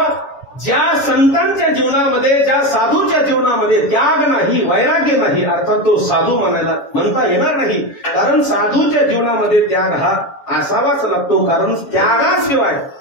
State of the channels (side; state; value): right; late; 7.2 ms